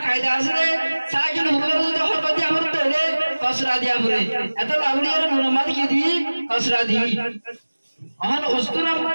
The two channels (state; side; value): inverted; both; correlation -1.00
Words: কায়দা আছে সাগিন উপরে যদি হরকত দিয়া বলে তাহলে কসরা দিয়া বলে এত লাউলিয়ার নুরমাদ কি দি কসরা দি অন উস্তুরার